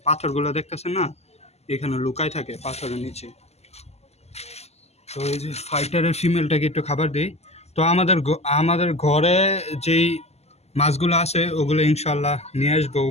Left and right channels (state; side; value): late; right; 0.30 ms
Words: পাথরগুলো দেখতেছেন না, এখানে লুকায় থাকে পাথরের নিচে। তো এই যে ফাইটারের ফিমেলটাকে একটু খাবার দিই। তো আমাদের ঘরে যেই মাছগুলো আছে ওগুলো ইনশাল্লাহ নিয়ে আসবো